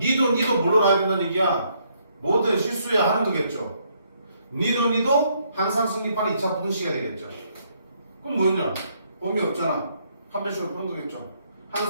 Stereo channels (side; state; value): both; inverted; correlation -0.71